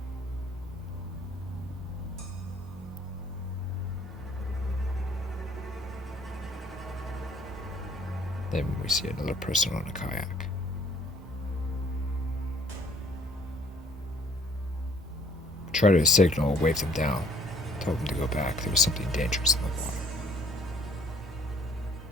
Then we see another person on a kayak. Try to signal, wave them down, tell them to go back. There was something dangerous in the water.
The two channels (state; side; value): normal; both; correlation 0.59